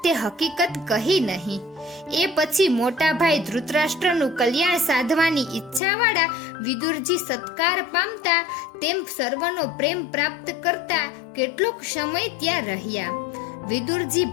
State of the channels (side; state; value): right; drops out; at 5.8 s